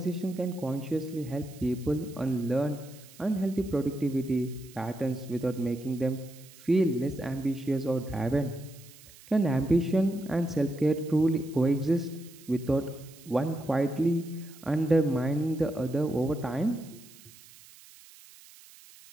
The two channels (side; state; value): right; noise; hiss, 22 dB below the sound